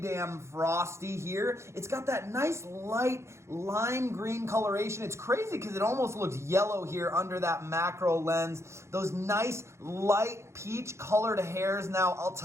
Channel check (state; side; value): late; left; 0.13 ms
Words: damn frosty here. It's got that nice light lime green coloration. It's crazy because it almost looks yellow here under that macro lens. Those nice light peach colored hairs. Now, I'll